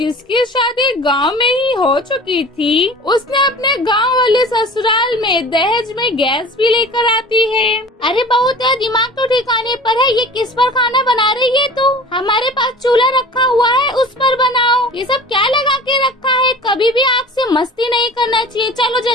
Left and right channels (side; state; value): both; normal; correlation 0.41